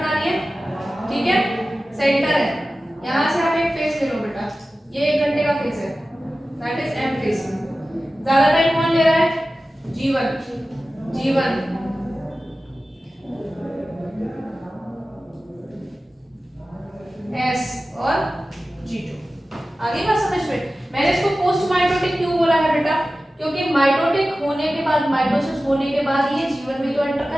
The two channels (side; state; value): both; normal; correlation 0.95